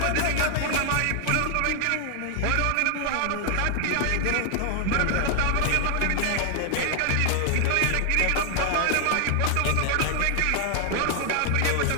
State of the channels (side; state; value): both; different; correlation 0.00